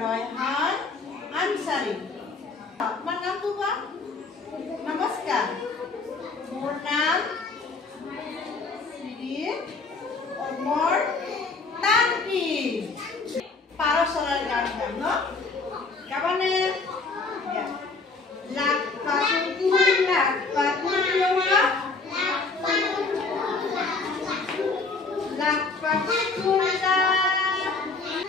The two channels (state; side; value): quieter; right; 4.0 dB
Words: ৰয়হান আনসাৰী। তোমাৰ নামটো কোৱা? নমস্কাৰ। মোৰ নাম শ্ৰী অমৰ তান্ত্ৰী। পাৰ চৰাইৰ গান গাম ন? গাবানে? লাখ পাখি লাখ পাখি লাখ পাখি কুলা